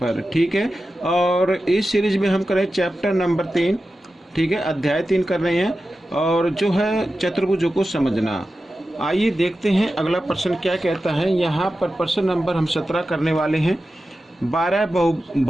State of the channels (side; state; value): both; normal; correlation 0.93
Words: ठीक है, और इस सीरीज में हम करें चैप्टर नंबर 3। ठीक है, अध्याय 3 कर रहे हैं और जो है चतुर्भुजों को समझना। आइए देखते हैं अगला प्रश्न क्या कहता है। यहाँ पर प्रश्न नंबर हम 17 करने वाले हैं।